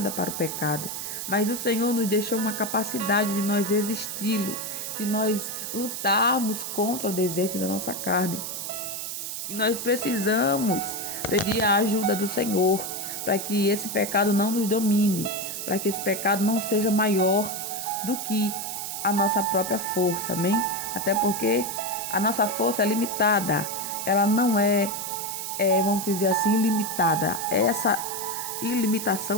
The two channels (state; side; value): noise; right; hiss, 5 dB below the sound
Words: para o pecado. Mas o Senhor nos deixou uma capacidade de nós resisti-lo, de nós lutarmos contra o desejo da nossa carne. E nós precisamos pedir a ajuda do Senhor para que esse pecado não nos domine, para que esse pecado não seja maior do que a nossa própria força, amém? Até porque a nossa força é limitada, ela não vamos dizer assim, ilimitada. Essa